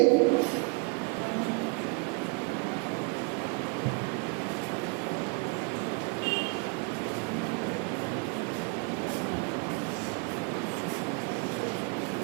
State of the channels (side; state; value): left; quieter; 32.9 dB